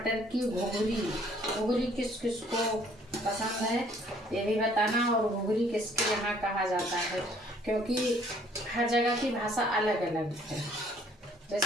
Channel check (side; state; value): both; normal; correlation 0.60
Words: की घुघरी किस किस को पसंद है ये भी बताना, और घुघरी किसके यहाँ कहा जाता है, क्योंकि हर जगह की भाषा अलग अलग है।